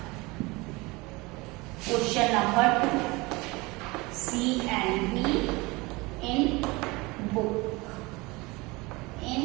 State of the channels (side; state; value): left; quieter; 23.8 dB